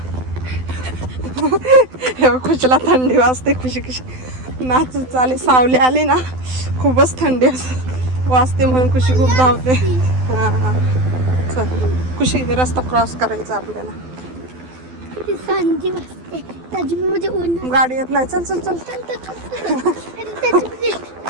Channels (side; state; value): left; late; 12 ms